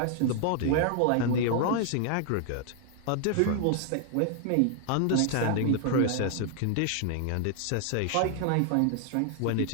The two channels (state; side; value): different; both; correlation 0.00